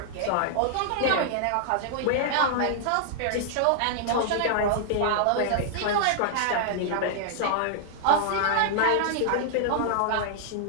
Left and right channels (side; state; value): both; different; correlation -0.01